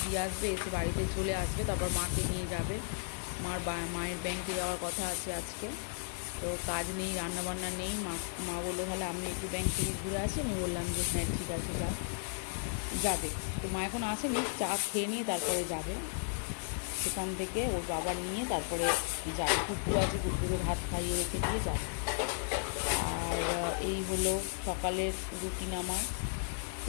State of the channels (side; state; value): right; silent; digital silence